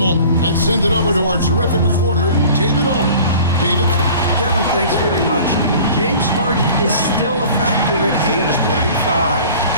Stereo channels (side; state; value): both; inverted; correlation -0.45